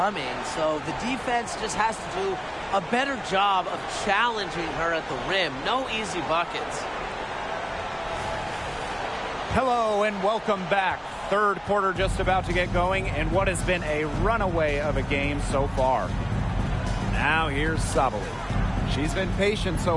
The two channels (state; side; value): identical; both; correlation 1.00